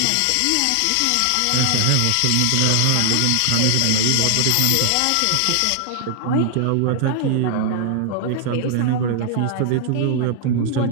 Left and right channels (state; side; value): different; both; correlation 0.00